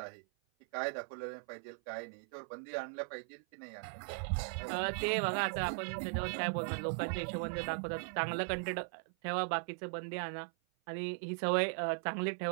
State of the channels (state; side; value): silent; left; 52 dB below the other